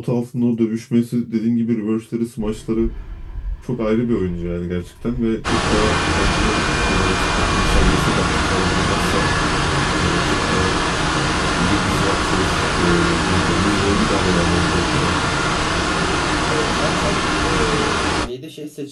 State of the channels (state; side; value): identical; both; correlation 1.00